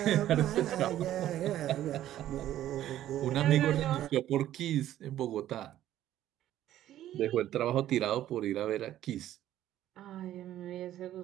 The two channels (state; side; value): quieter; left; 12.7 dB